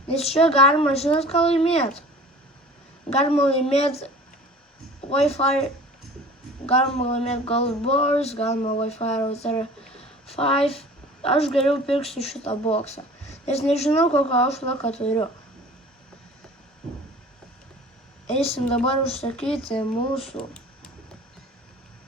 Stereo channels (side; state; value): both; normal; correlation 0.43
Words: nes čia galima, žinot, ką laimėti. Galima laimėti Wi-Fi, galima laimėti Gold Bars, galima Wi-Fi router 5. Aš geriau pirksiu šitą boksą, nes nežinau, kokio aš laką turiu. Eisim dabar užsakyti mūsų